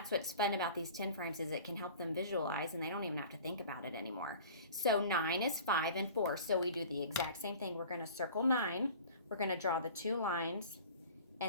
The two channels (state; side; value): inverted; both; correlation -0.43